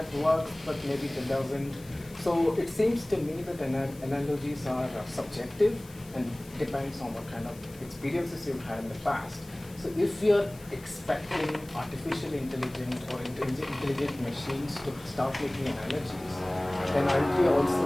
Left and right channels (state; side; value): noise; left; hiss, 22 dB below the sound